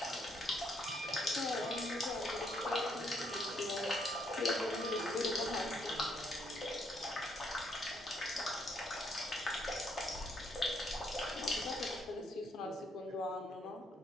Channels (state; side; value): normal; both; correlation 0.72